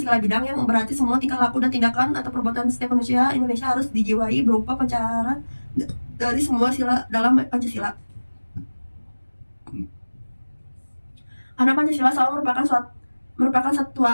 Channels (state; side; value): inverted; both; correlation -1.00